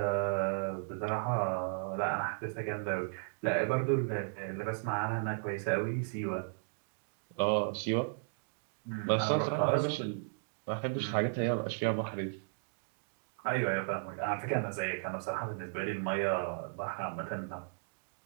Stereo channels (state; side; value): silent; left; digital silence